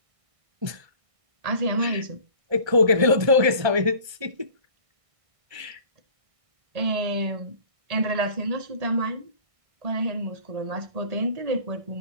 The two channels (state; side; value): late; left; 1.3 ms